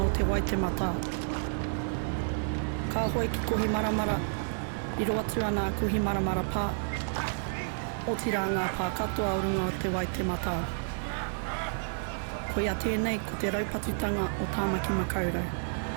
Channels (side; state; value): left; silent; 58 dB below the other